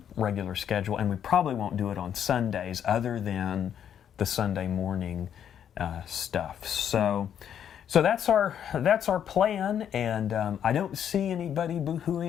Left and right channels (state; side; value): quieter; right; 9.2 dB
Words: regular schedule, and we probably won't do it on Sundays other than the Sunday morning stuff. So that's our plan, and I don't see anybody